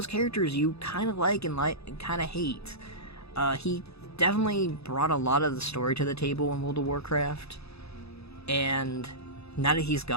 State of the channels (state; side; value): late; right; 0.79 ms